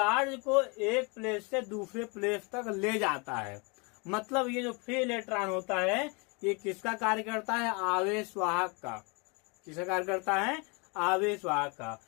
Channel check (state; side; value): quieter; right; 31.2 dB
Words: को एक प्लेस से दूसरे प्लेस तक ले जाता है। मतलब ये जो फ्री इलेक्ट्रॉन होता है ये किसका कार्य करता है? आवेश वाहक का। किसका कार्य करता है? आवेश वाहक का।